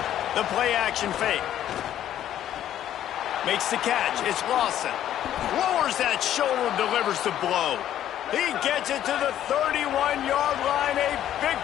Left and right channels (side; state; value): right; quieter; 11.4 dB